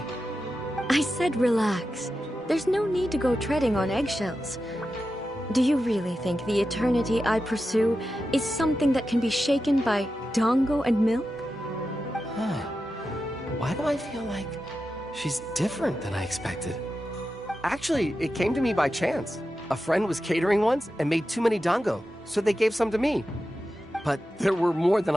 I said relax. There's no need to go treading on eggshells. Do you really think the eternity I pursue is something that can be shaken by dango and milk? Why do I feel like she's different than I expected? Actually, it came to me by chance. A friend was catering once and made too many dango, so they gave some to me. But there were more than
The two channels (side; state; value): both; normal; correlation 0.91